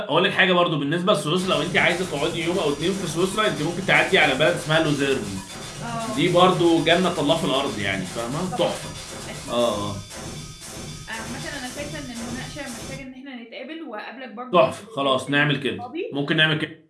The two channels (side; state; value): both; identical; correlation 1.00